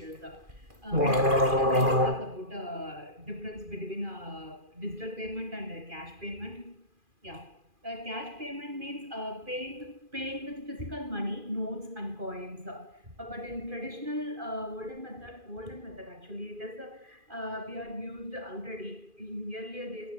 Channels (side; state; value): left; late; 2.4 ms